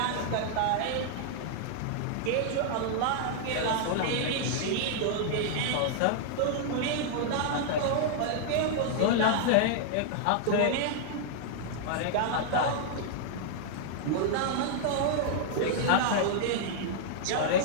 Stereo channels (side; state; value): both; different; correlation -0.01